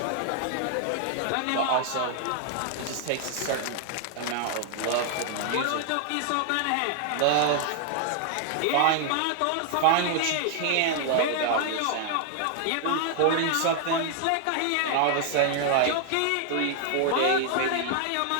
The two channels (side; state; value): both; different; correlation 0.00